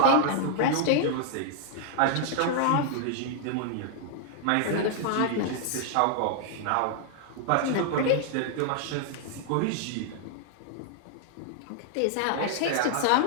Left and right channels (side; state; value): both; different; correlation 0.00